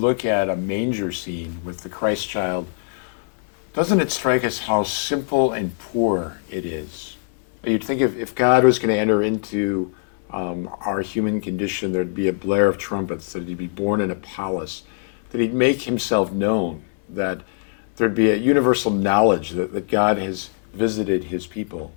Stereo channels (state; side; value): silent; right; 57 dB below the other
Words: at a manger scene with the Christ child, doesn't it strike us how simple and poor it is? You'd think if God was going to enter into our human condition, there'd be a blare of trumpets, that he'd be born in a palace, that he'd make himself known, that there'd be a universal knowledge that God has visited his people.